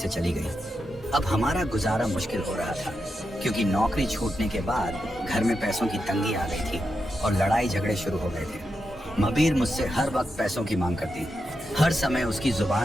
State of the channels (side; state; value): both; normal; correlation 0.87